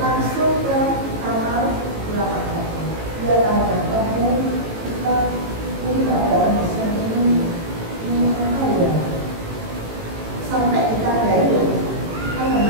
ke kamar ulama. Dia tanya, kamu kita ini keadaan pesan ini apa ya? Sampai kita dari kan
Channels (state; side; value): late; left; 18 ms